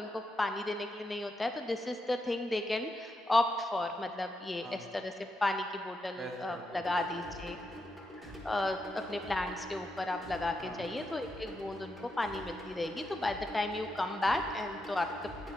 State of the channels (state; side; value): normal; both; correlation 0.83